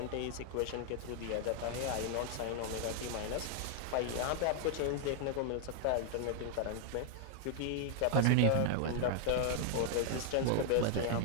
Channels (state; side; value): different; both; correlation -0.01